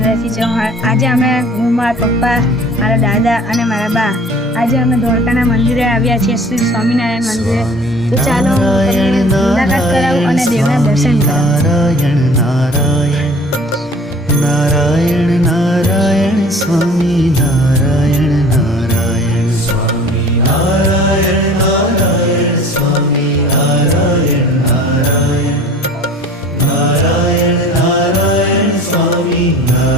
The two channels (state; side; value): normal; both; correlation 0.47